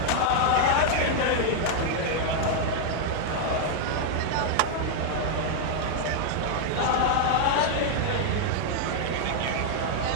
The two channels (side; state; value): both; different; correlation 0.00